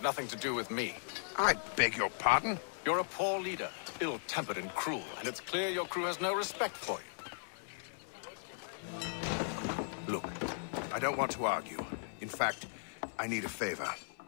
nothing to do with me. I beg your pardon? You're a poor leader, ill-tempered and cruel, and it's clear your crew has no respect for you. Look, I don't want to argue. In fact, I need a favor.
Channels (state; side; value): silent; right; 53 dB below the other